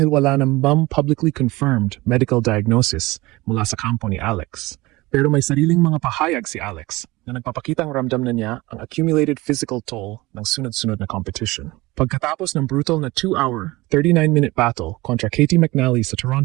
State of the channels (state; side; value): quieter; left; 20.9 dB